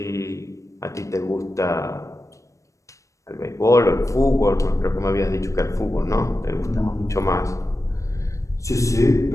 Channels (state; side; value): late; right; 0.15 ms